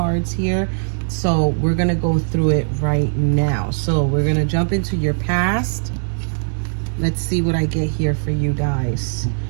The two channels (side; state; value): left; silent; digital silence